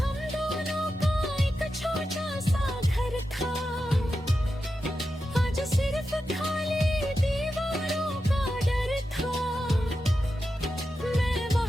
दोनों का एक छोटा सा घर था, आज सिर्फ खाली दीवारों का डर था। मैं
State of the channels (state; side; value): normal; both; correlation 0.90